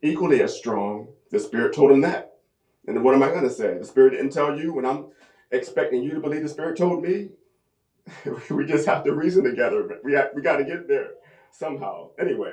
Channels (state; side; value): identical; both; correlation 1.00